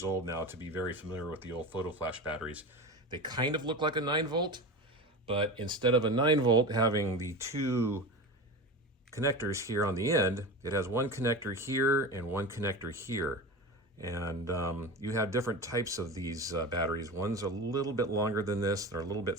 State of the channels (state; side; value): normal; both; correlation 0.28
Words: old now to be very familiar with the old photo flash batteries. They kind of look like a 9-volt, but instead of a 9-volt having the two connectors here on the end, it has one connector here and one connector here. And you have different types of these batteries. One's a little bit longer than this, they're a little bit